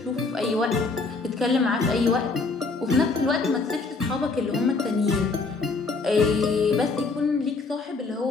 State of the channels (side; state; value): right; quieter; 4.0 dB